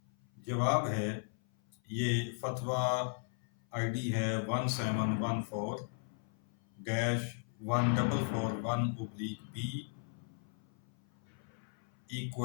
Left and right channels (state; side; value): silent; right; 53 dB below the other